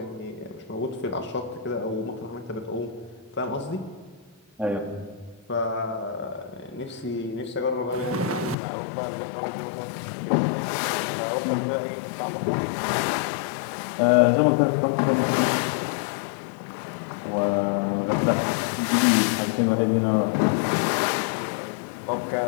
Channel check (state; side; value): drops out; right; at 8.6 s